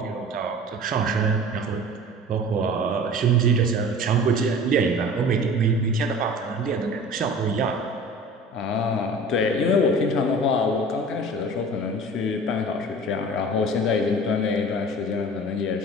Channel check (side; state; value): both; normal; correlation 0.40